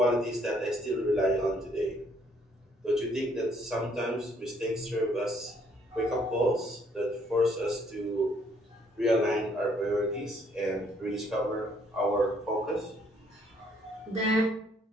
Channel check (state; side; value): normal; both; correlation 0.66